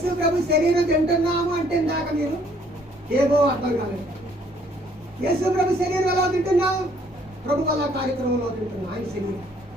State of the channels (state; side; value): normal; both; correlation 0.63